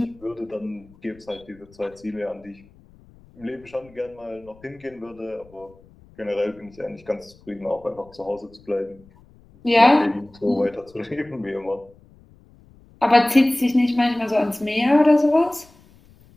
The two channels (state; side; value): noise; left; rumble, 27 dB below the sound